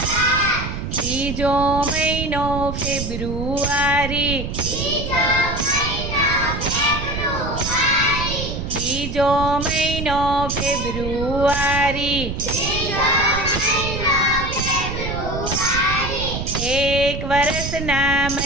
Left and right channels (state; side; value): noise; right; rumble, 5 dB below the sound